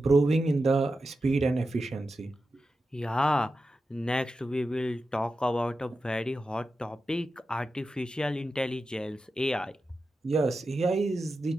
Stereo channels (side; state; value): both; normal; correlation 0.91